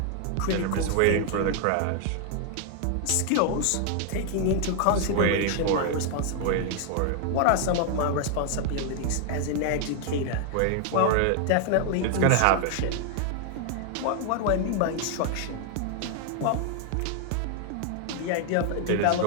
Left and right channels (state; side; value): different; both; correlation 0.00